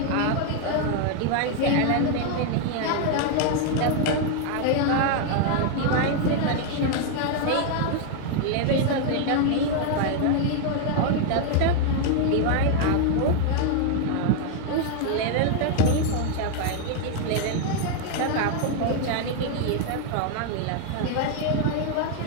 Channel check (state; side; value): different; both; correlation 0.00